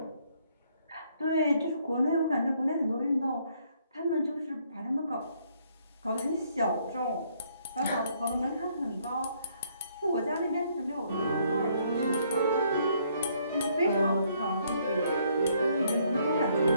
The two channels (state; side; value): inverted; both; correlation -0.68